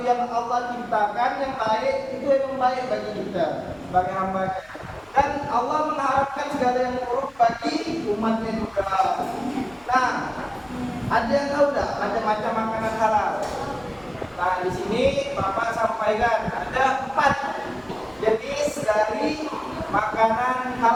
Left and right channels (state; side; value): noise; left; hum, 29 dB below the sound